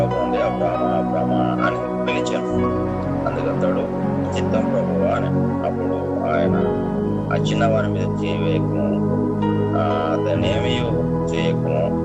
నుండి అబ్రహామా అబ్రహామా అని పిలిచాను. అందుకతడు చిత్తం ప్రభువా అని. అప్పుడు ఆయన ఆ చిన్నవారి మీద చేయవేయకము, అతనేమీ చేయకము,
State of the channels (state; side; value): identical; both; correlation 1.00